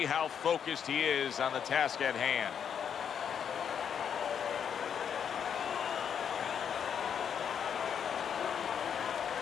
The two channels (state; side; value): quieter; right; 7.9 dB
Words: how focused he is on the task at hand.